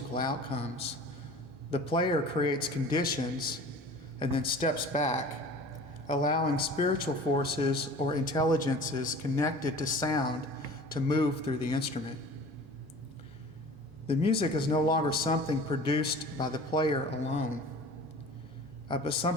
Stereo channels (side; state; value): both; normal; correlation 0.42